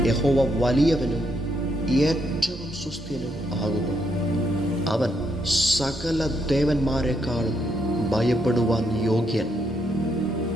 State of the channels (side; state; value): both; normal; correlation 0.76